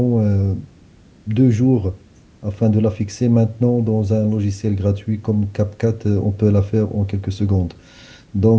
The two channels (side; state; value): both; identical; correlation 1.00